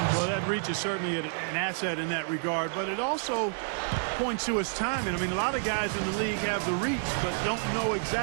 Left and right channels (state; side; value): silent; left; digital silence